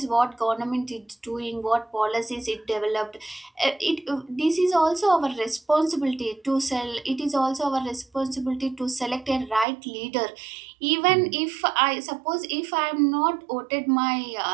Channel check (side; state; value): left; drops out; at 9.7 s